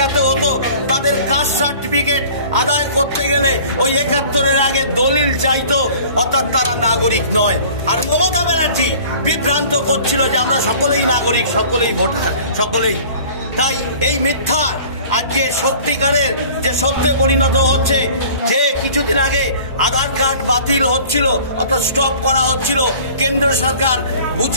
হতো, তাদের কাস্ট সার্টিফিকেট আদায় করতে গেলে ওই 71-এর আগে দলিল চাইতো, অর্থাৎ তারা নাগরিক নয়। আর মমতা ব্যানার্জি বিভ্রান্ত করছিল যে আমরা সকলেই নাগরিক, সকলেই ভোটার, সকলেই। তাই এই মিথ্যা আজকে সত্যিকারের যে সত্যে পরিণত হচ্ছে, যে কিছুদিন আগে আধার কার্ড বাতিল হচ্ছিল অর্থাৎ স্টপ করা হচ্ছিল, কেন্দ্র সরকার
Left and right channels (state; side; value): inverted; both; correlation -0.47